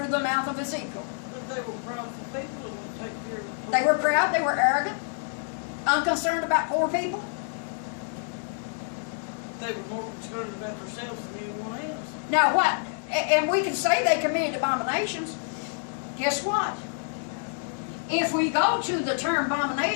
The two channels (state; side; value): silent; right; 60 dB below the other